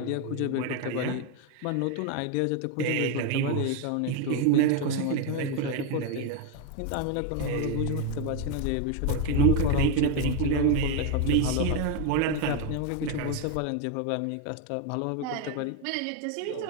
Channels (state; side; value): different; both; correlation 0.02